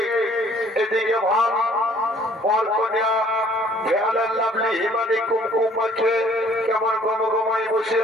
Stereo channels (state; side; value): normal; both; correlation 0.58